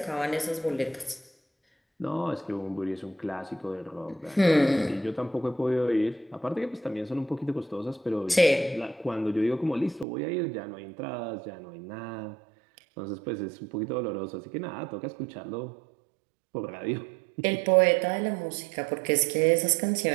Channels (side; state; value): left; drops out; at 10.1 s